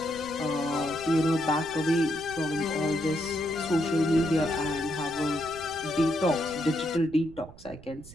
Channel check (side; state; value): right; noise; rumble, 19 dB below the sound